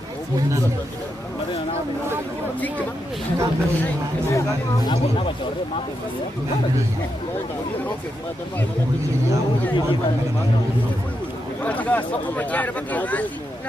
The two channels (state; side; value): normal; both; correlation 0.84